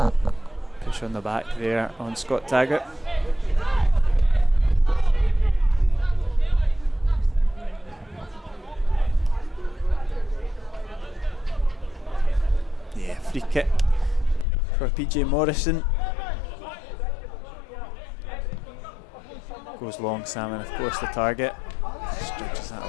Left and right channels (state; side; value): drops out; right; at 14.5 s